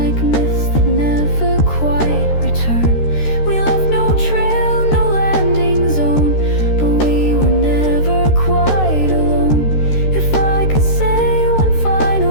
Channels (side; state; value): right; late; 13 ms